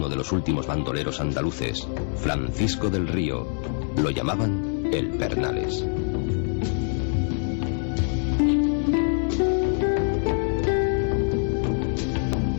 de los últimos bandoleros andaluces, Francisco del Río. Lo llamaban el Pernales.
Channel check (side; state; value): right; silent; 57 dB below the other